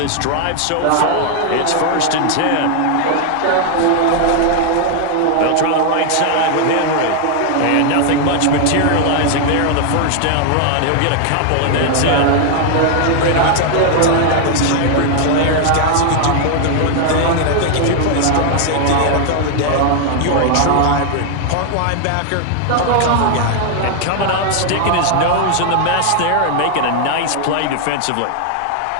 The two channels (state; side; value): different; both; correlation 0.00